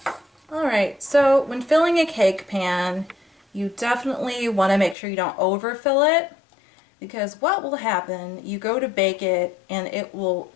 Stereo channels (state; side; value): drops out; right; at 5.0 s